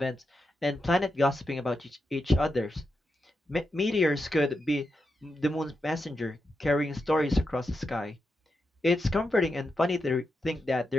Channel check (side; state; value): both; normal; correlation 0.86